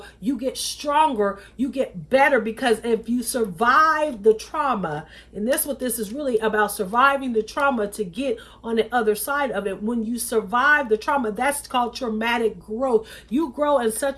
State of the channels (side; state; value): both; identical; correlation 1.00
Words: you get stronger, you get better, because if you survive the trauma, and that's what this is really about, surviving the trauma to get on the other side of it. When you survive the trauma, that's called traumatic growth. You grow in